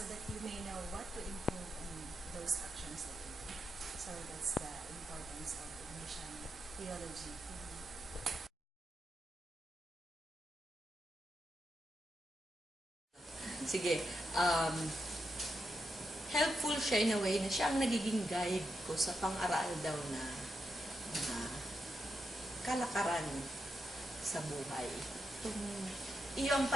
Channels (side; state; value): both; normal; correlation 0.85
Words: that you may know what to improve in those actions that you do. So that's the importance of mission theology. Sige, helpful siya in a way na siya ang nagiging guide ko sa pang-aral daw na kalakaran sa buhay. Iyong